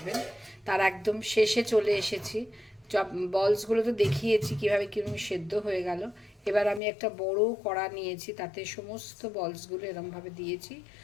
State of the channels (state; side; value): drops out; right; at 6.8 s